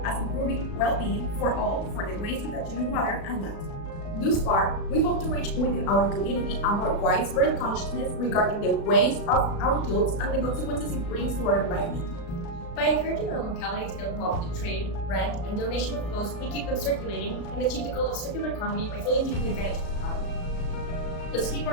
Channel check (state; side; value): late; right; 36 ms